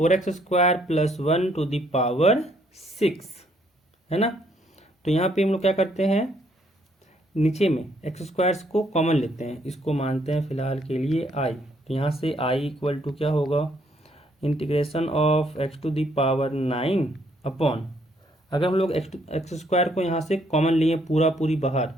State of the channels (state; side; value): normal; both; correlation 0.69